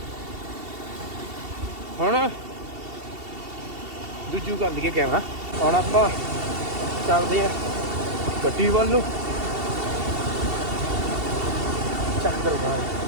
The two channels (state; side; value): late; left; 2.7 ms